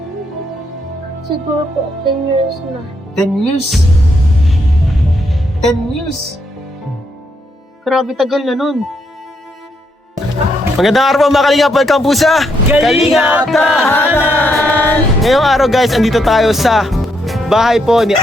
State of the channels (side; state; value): both; normal; correlation 0.77